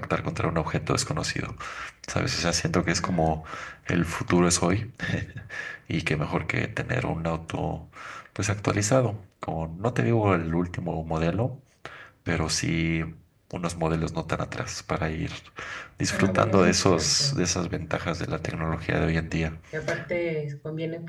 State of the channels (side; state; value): both; identical; correlation 1.00